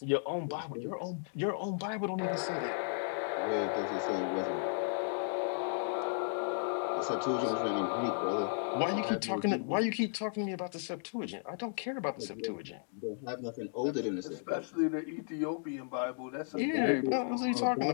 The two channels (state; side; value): silent; right; digital silence